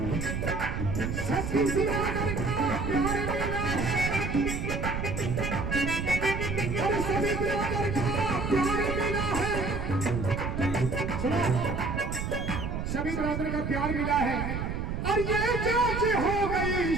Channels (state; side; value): noise; right; rumble, 3 dB below the sound